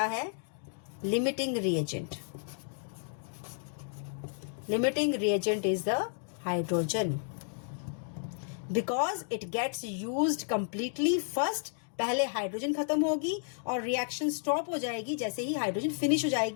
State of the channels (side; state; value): right; silent; digital silence